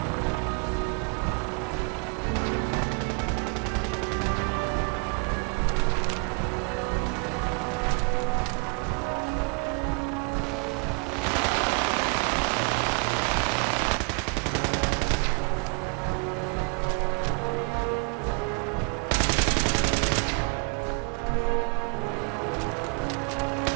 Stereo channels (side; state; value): left; quieter; 35.9 dB